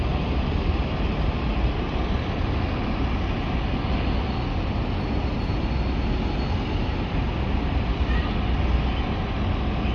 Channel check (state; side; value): identical; both; correlation 1.00